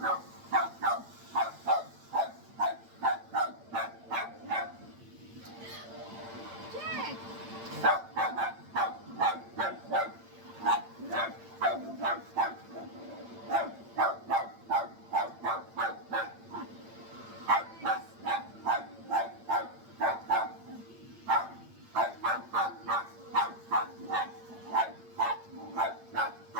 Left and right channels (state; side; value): late; left; 8.8 ms